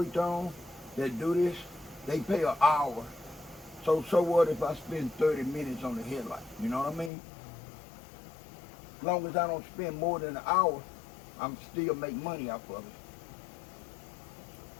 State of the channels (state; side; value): drops out; right; at 7.1 s